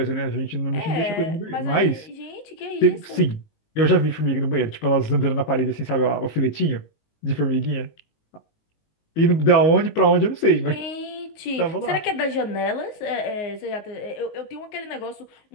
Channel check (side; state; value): right; late; 19 ms